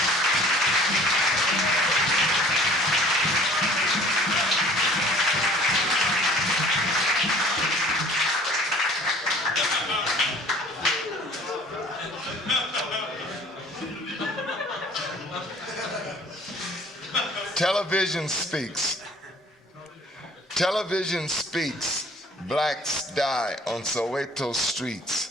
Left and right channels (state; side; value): normal; both; correlation 0.51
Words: Television speaks. Television speaks. Blacks die on Soweto